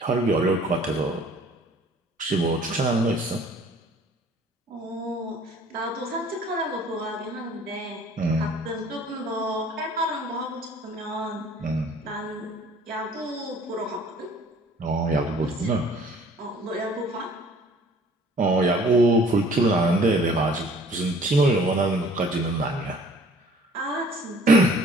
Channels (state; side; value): normal; both; correlation 0.53